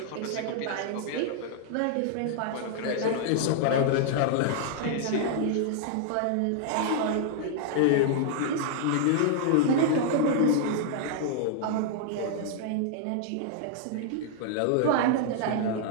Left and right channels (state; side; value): different; both; correlation -0.01